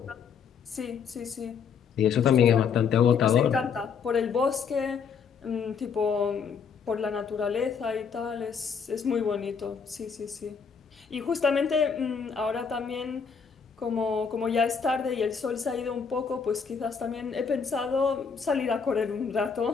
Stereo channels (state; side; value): quieter; right; 6.3 dB